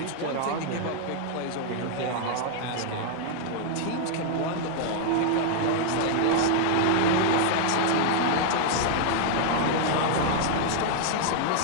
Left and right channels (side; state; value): both; different; correlation 0.00